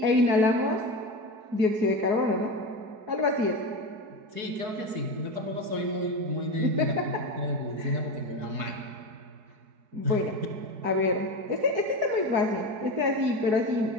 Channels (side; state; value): left; late; 4.7 ms